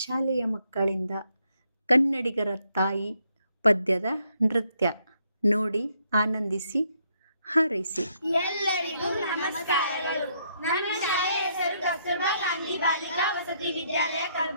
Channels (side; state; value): both; inverted; correlation -0.73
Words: ಶಾಲೆಯ ಮಕ್ಕಳಿಂದ ಕನ್ನಡಿಗರ ತಾಯಿ ಪದ್ಯದ ನೃತ್ಯ ನೋಡಿ ಆನಂದಿಸಿ ಹಾರೈಸಿ. ಎಲ್ಲರಿಗೂ ನಮಸ್ಕಾರಗಳು. ನನ್ನ ಶಾಲೆಯ ಹೆಸರು ಕಸ್ತೂರ್ಬಾ ಗಾಂಧಿ ಬಾಲಿಕಾ ವಸತಿ ವಿದ್ಯಾಲಯ